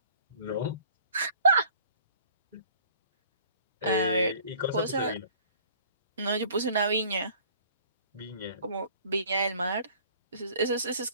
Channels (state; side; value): inverted; both; correlation -0.53